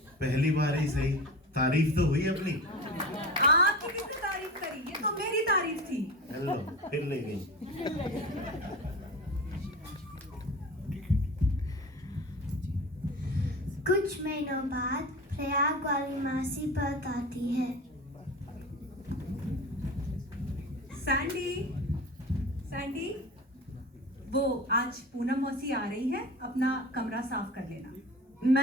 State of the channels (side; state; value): both; normal; correlation 0.32